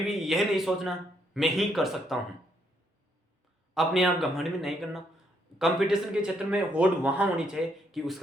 यह नहीं सोचना मैं ही कर सकता हूं। अपने आप घमंड में नहीं करना। कंपटीशन के क्षेत्र में होड़ वहां होनी चाहिए कि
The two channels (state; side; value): normal; both; correlation 0.73